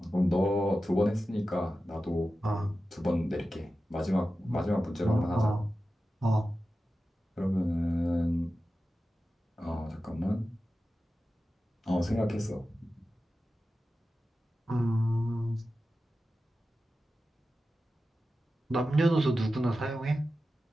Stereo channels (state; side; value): normal; both; correlation 0.93